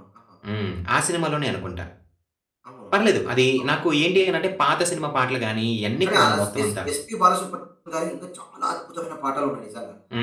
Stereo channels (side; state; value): both; identical; correlation 1.00